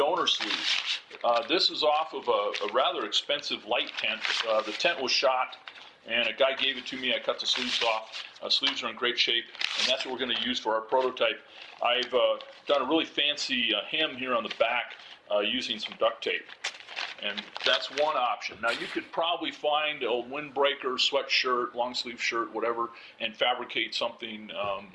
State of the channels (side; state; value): both; identical; correlation 1.00